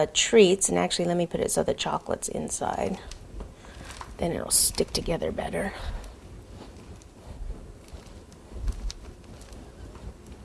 treats, and actually let me put it so the chocolate's inside. Then it'll stick together better.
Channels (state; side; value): identical; both; correlation 1.00